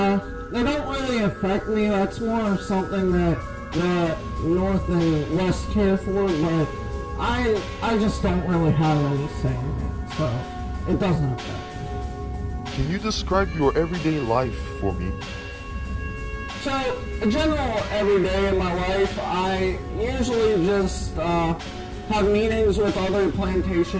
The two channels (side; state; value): both; identical; correlation 1.00